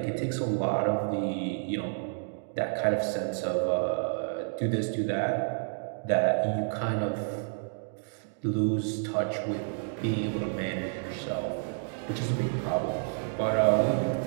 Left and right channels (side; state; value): left; silent; digital silence